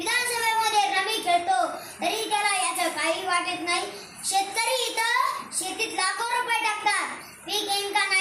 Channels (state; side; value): identical; both; correlation 1.00